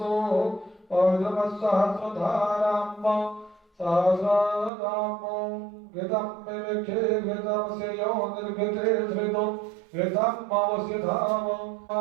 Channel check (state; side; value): drops out; left; at 4.7 s